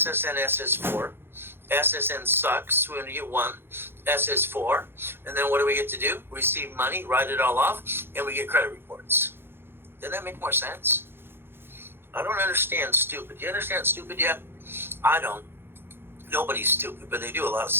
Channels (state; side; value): late; left; 0.11 ms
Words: SS4. SSN sucks. We only get one. SS4. And then what do we get to do? Receive money, write it all off, and we get credit reports. Doesn't that make more sense? I don't understand stupid. Do you understand stupid yet? I don't. Nobody's stupid, but they do a lot of